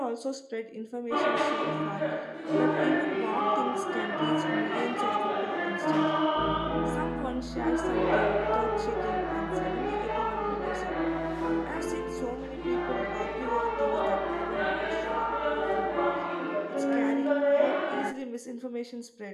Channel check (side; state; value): both; identical; correlation 1.00